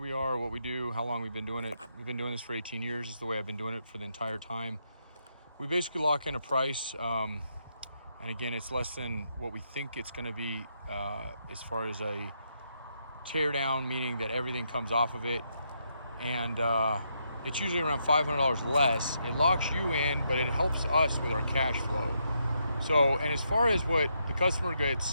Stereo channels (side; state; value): both; inverted; correlation -0.79